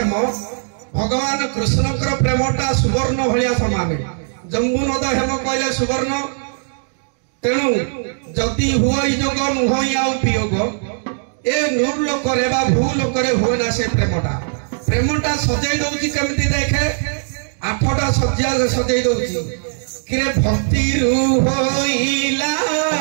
ভগবান কৃষ্ণଙ୍କର ପ୍ରେମଟା ସୁବର୍ଣ୍ଣ ଭଳିଆ ସମାନ ଜମ୍ବୁନଦ ହେମ କହିଲେ ସୁବର୍ଣ୍ଣ ତେଣୁ ଯଦି ହୁଇ ଯୋଗ ନୁହଁ ଆଉ ବିୟୋଗ ଏ ନୂର ଲୋକରେ ବା ଭୂ ଲୋକରେ ହୁଏ ନା ସେ ପ୍ରେମଟା ସଜେଇ ଦଉଛି କେମିତି ଦେଖେ 8ଟା ସଜ୍ଜା ସଜେଇ ଦଉଛି କିରେ ଭକ୍ତିରୁ ହୋଇଲା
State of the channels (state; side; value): silent; left; digital silence